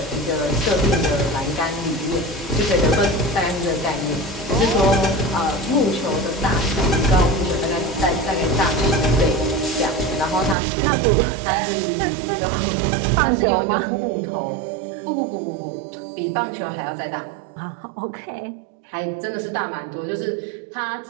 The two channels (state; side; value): drops out; left; at 10.6 s